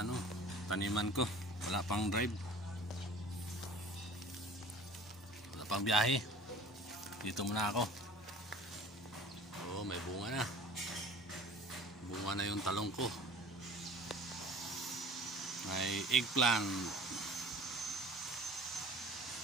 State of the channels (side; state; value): both; normal; correlation 0.44